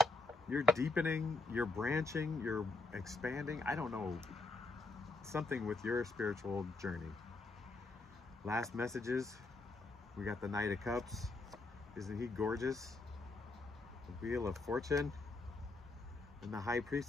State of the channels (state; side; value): quieter; right; 3.2 dB